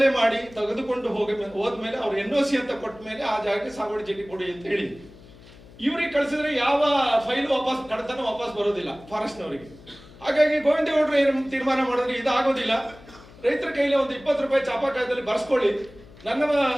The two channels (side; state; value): left; noise; hum, 21 dB below the sound